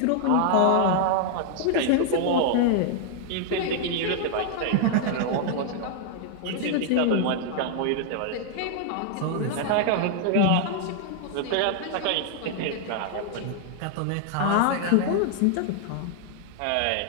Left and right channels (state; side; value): different; both; correlation 0.00